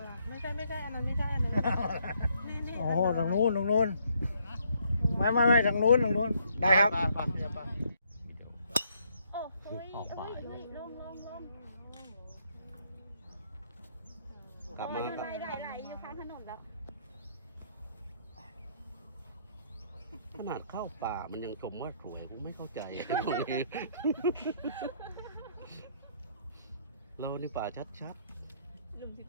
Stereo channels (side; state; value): both; inverted; correlation -0.70